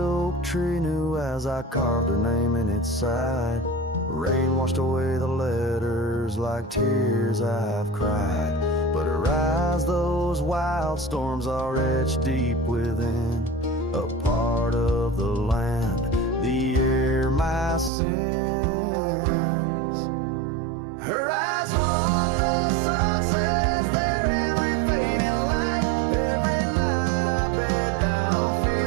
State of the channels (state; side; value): drops out; left; at 17.9 s